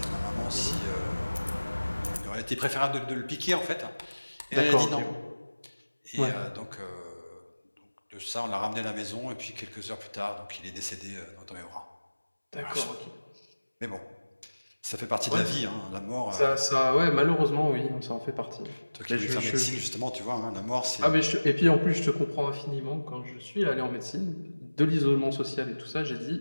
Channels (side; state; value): both; inverted; correlation -1.00